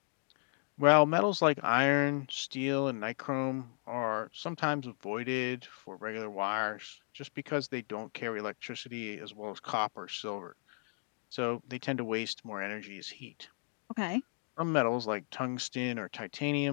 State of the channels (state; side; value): silent; right; 54 dB below the other